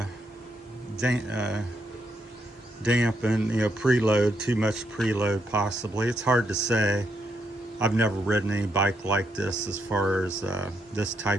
dampen, preload, too much preload possibly. It's hard to say. I've never ridden any bike like this as far as this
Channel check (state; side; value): normal; both; correlation 0.78